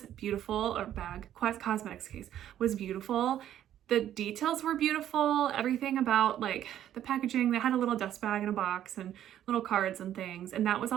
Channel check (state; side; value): quieter; left; 11.3 dB